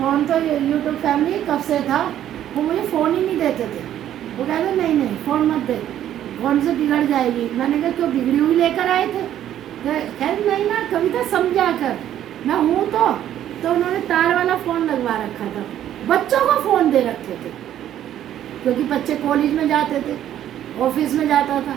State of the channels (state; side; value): quieter; left; 11.3 dB